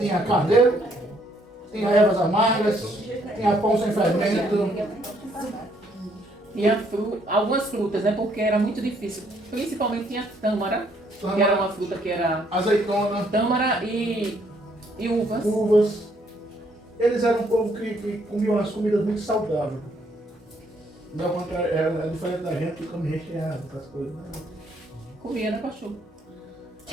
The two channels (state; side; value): normal; both; correlation 0.68